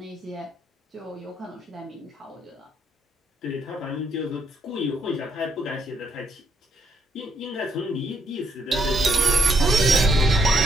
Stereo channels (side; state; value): both; normal; correlation 0.73